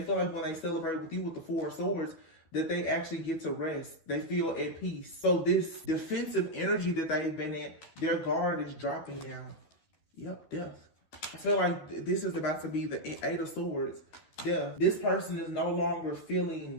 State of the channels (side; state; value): right; late; 12 ms